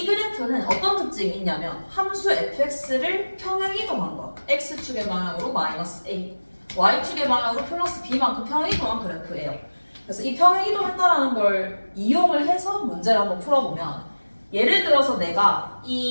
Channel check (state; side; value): inverted; both; correlation -1.00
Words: 그래프는 어떤 특징이 있냐면 함수 fx를 평행이동한 거. x축의 방향으로 마이너스 a, y축의 방향으로 플러스 b만큼 평행이동한 그래프예요. 그래서 이 평행이동했다라는 걸 이용을 해서 문제를 한번 풀어보면 예를 들어서 내가